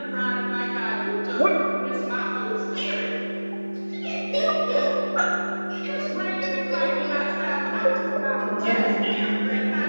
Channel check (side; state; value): both; inverted; correlation -1.00